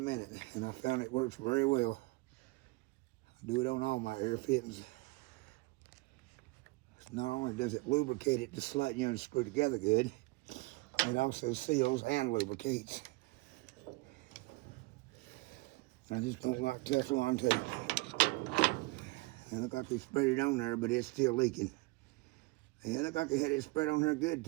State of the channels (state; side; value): quieter; left; 24.1 dB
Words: minute. And I found it works very well. I do it on all my air fittings. Not only does it lubricate it to slide you and screw together good, it also seals and lubricates. I just don't like Teflon tape. It looked like they spread it on there, but it's still leaking. Yeah, it looked like they had it spread on there good